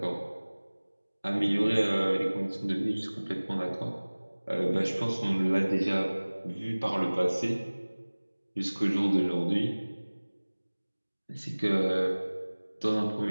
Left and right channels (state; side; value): inverted; both; correlation -1.00